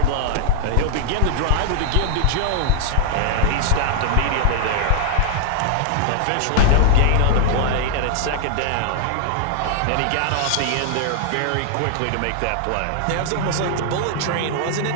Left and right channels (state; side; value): different; both; correlation 0.00